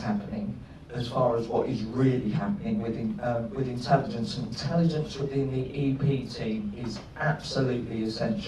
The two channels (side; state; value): both; identical; correlation 1.00